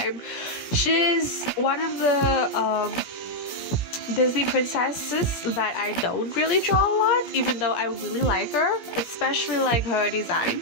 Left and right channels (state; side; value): late; right; 17 ms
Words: She's one of the Disney princesses that I don't really draw a lot, even though I really like her, especially like her design.